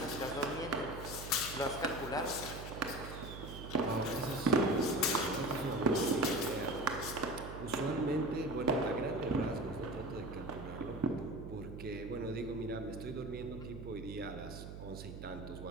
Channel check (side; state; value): right; noise; hum, 10 dB below the sound